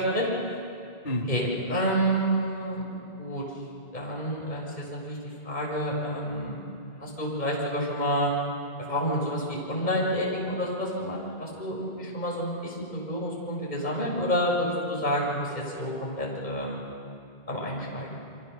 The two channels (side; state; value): right; late; 2.1 ms